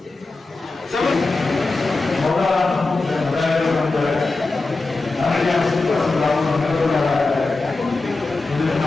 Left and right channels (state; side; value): quieter; right; 3.5 dB